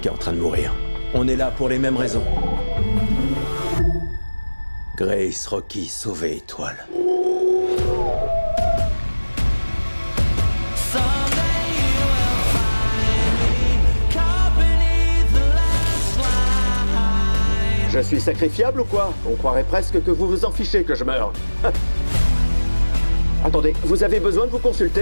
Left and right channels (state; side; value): inverted; both; correlation -1.00